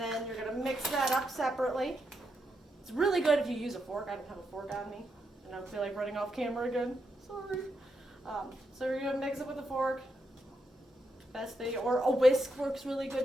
you're going to mix that up separately. It's really good if you use a fork. I don't have a fork on me, and I don't feel like running off camera again. Sorry. So you're going to mix it with a fork. Best thing, or a whisk works really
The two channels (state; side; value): normal; both; correlation 0.82